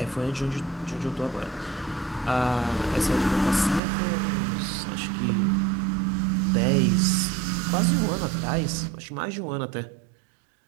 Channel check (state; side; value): drops out; left; at 3.8 s